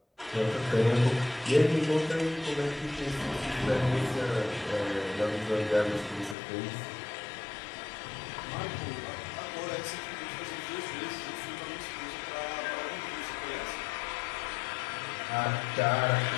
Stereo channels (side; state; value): right; drops out; at 6.4 s